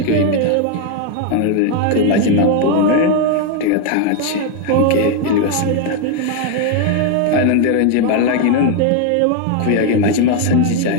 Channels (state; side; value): different; both; correlation 0.01